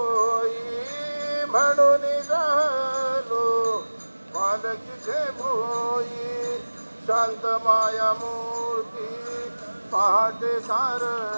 म्हणून राहलो बालकीचे भोई शांत माया मूर्ती पहाटे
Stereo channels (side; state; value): both; inverted; correlation -1.00